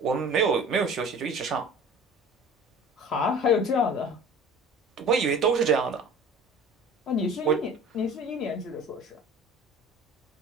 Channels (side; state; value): both; normal; correlation 0.43